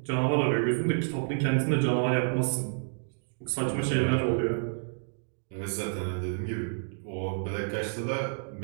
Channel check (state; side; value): silent; left; digital silence